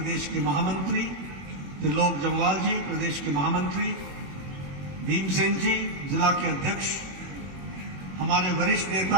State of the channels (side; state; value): left; late; 21 ms